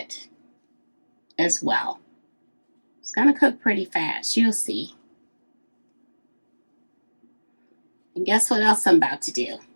as well. It's going to cook pretty fast. You'll see. And guess what else I'm about to do?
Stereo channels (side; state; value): both; inverted; correlation -1.00